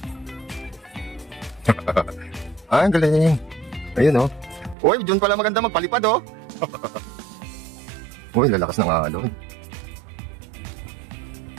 Ang galing. Ayun, oh. Uy, dyan pala maganda magpalipad, oh. Uy, lalakas ng alon.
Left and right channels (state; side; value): drops out; left; at 4.8 s